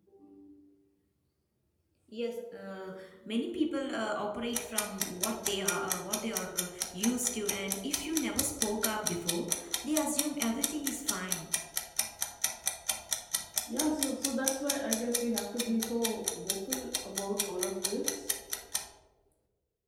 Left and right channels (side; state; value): both; identical; correlation 1.00